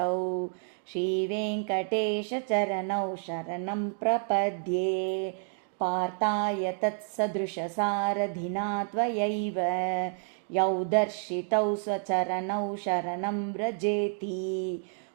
श्रीवेङ्कटेशचरणौ शरणं प्रपद्ये पार्थाय तत्सदृशसारथिना त्वयैव यौ दर्शितौ स्वचरणौ शरणं व्रजेति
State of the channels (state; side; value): silent; left; 58 dB below the other